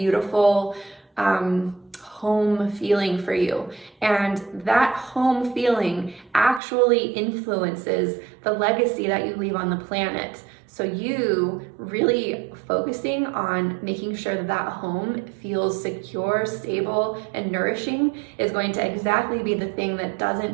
home feeling for you. And that home feeling actually influences the legacy that you leave on the planet. So you really focusing on making sure that home feels secure, stable, and nourishing is going to exactly be the thing that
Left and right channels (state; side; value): drops out; left; at 6.6 s